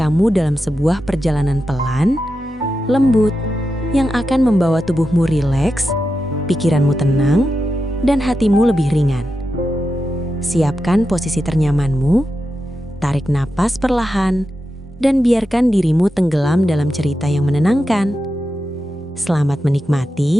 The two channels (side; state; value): both; normal; correlation 0.89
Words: dalam sebuah perjalanan pelan, lembut, yang akan membawa tubuhmu rileks, pikiranmu tenang, dan hatimu lebih ringan. Siapkan posisi ternyamanmu, tarik napas perlahan, dan biarkan dirimu tenggelam dalam cerita yang menenangkan. Selamat